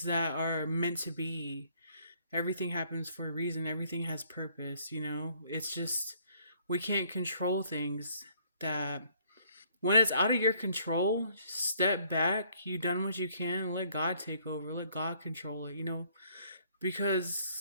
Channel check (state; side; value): inverted; both; correlation -0.63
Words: that are meant to be. Everything happens for a reason, everything has purpose. It's just, we can't control things that, when it's out of your control, step back. You done what you can. Let God take over. Let God control it.